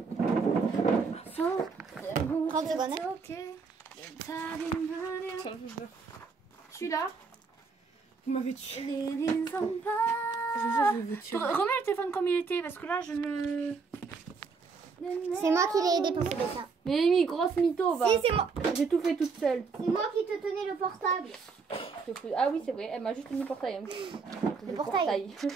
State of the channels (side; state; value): left; quieter; 4.9 dB